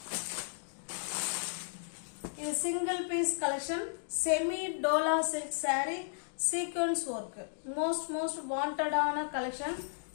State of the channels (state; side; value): silent; right; digital silence